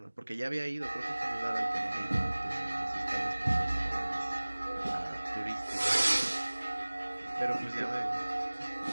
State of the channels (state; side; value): inverted; both; correlation -1.00